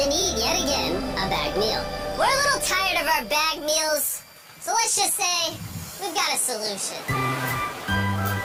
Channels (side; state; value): both; identical; correlation 1.00